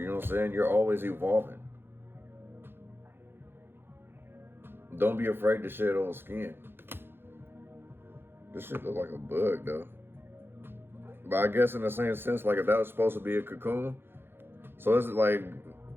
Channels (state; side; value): late; left; 0.10 ms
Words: know what I'm saying? You're always evolving. Don't be afraid to shed old skin. This shit look like a bug, though. But I guess in the same sense, like if that was supposed to be a cocoon, so it's like